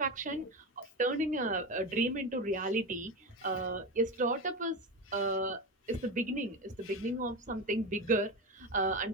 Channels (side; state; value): both; normal; correlation 0.20